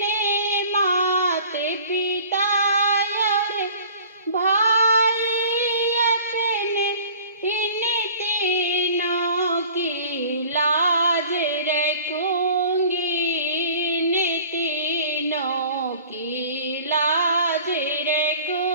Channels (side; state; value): both; inverted; correlation -0.46